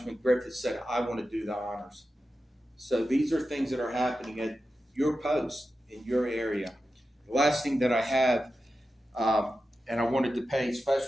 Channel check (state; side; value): normal; both; correlation 0.92